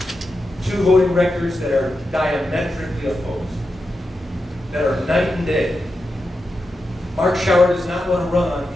2 voting records that are diametrically opposed, that are night and day. Mark Schauer does not want to run on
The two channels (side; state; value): both; normal; correlation 0.89